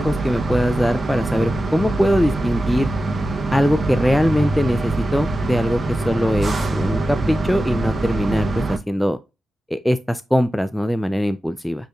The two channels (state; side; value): normal; both; correlation 0.93